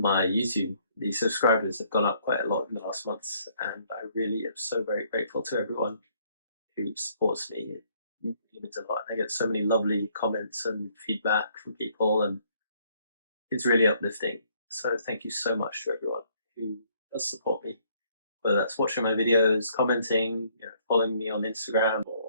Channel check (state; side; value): inverted; both; correlation -0.65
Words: YouTube, the subscribers have gone up quite a lot in the last months, and I really am so very grateful to everyone who supports me. It means a lot. I get so many lovely comments and feedback from people, and it's really uplifting. So thank you so much to everyone who does support me, whether that's watching my videos, commenting, following me on Instagram